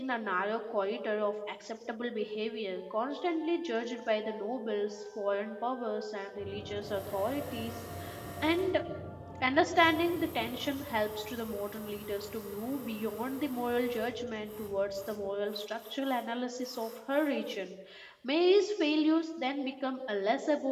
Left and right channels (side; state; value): both; identical; correlation 1.00